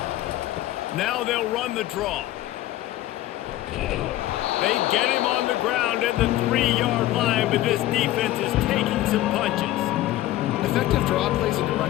Now they'll run the draw. They get him on the ground at the 3-yard line, but this defense is taking some punches. Effective draw plays in the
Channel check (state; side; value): quieter; right; 14.9 dB